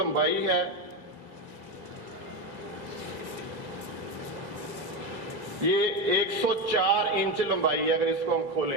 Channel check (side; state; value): left; late; 2.0 ms